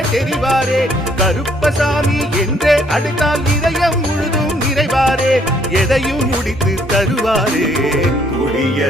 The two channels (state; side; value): normal; both; correlation 0.66